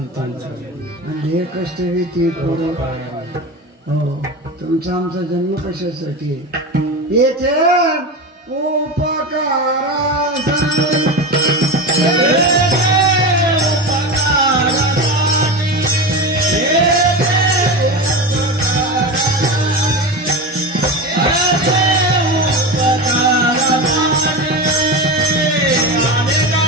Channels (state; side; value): normal; both; correlation 0.23